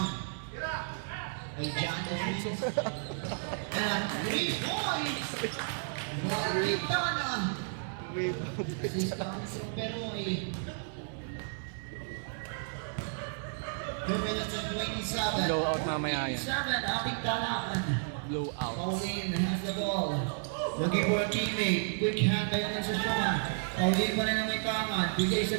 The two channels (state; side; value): silent; left; 56 dB below the other